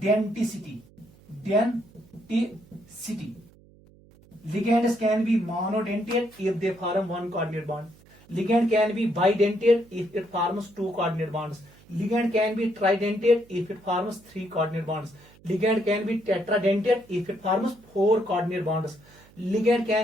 Denticity ligands can be monodentate if they form one coordinate bond. Ligand can be bidentate if it forms two coordinate bonds. Ligand can be tridentate if it forms three coordinate bonds. Ligand can be tetradentate if it forms four coordinate bonds. Ligand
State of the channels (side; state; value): right; noise; hum, 26 dB below the sound